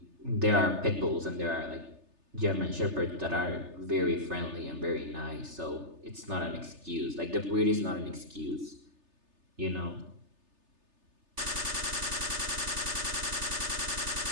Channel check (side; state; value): left; late; 3.3 ms